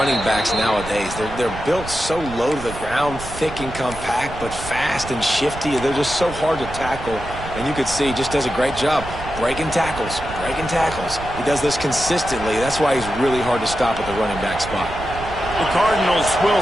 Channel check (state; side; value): noise; right; rumble, 12 dB below the sound